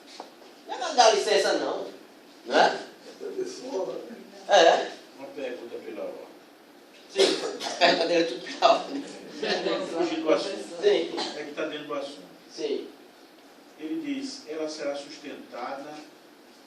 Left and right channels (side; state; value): both; identical; correlation 1.00